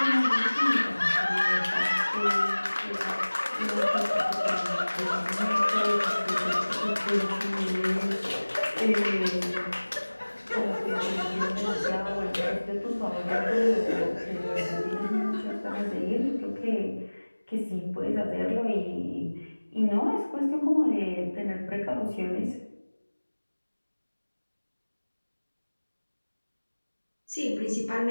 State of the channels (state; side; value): inverted; both; correlation -1.00